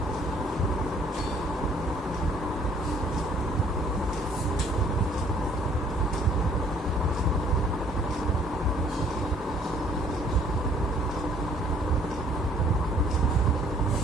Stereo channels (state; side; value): normal; both; correlation 0.59